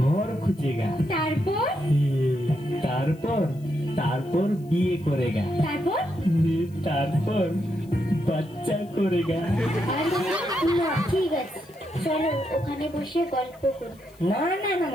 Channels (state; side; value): noise; left; hiss, 29 dB below the sound